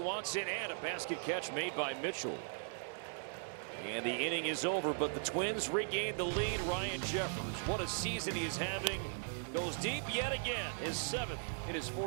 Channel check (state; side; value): silent; left; digital silence